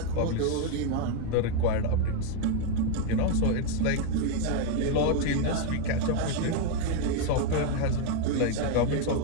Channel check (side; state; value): both; different; correlation 0.01